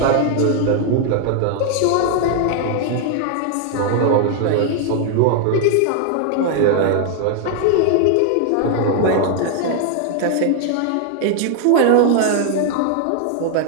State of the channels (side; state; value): both; different; correlation 0.00